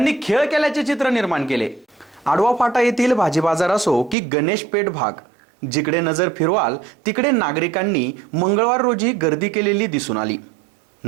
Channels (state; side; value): drops out; left; at 4.2 s